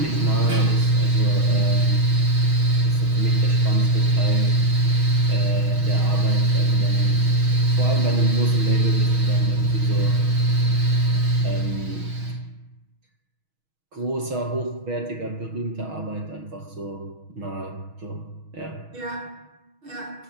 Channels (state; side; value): late; left; 6.3 ms